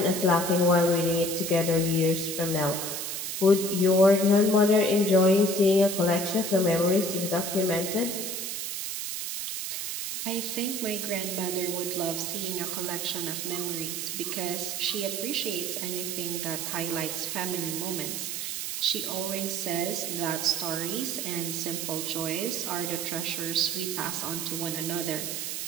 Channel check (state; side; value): noise; right; hiss, 4 dB below the sound